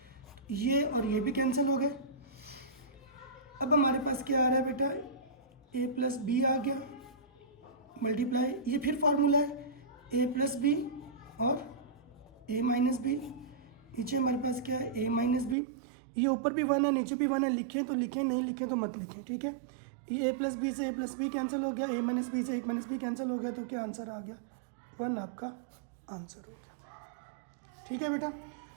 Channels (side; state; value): left; drops out; at 15.6 s